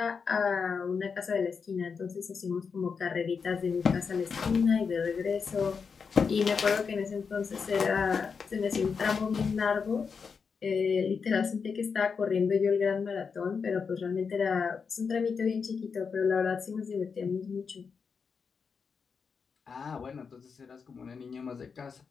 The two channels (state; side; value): quieter; right; 5.7 dB